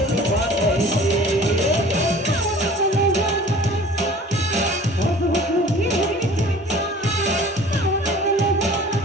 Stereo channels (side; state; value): both; normal; correlation 0.46